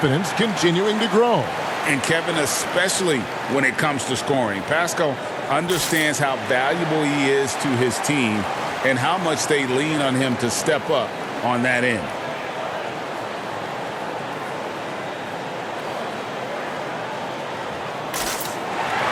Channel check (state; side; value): identical; both; correlation 1.00